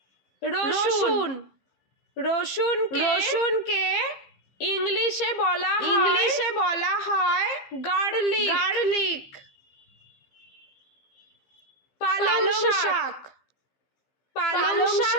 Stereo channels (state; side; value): late; right; 15 ms